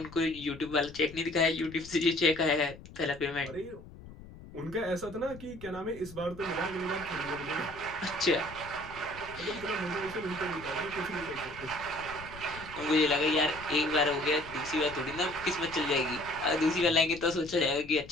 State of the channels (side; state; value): left; noise; rumble, 17 dB below the sound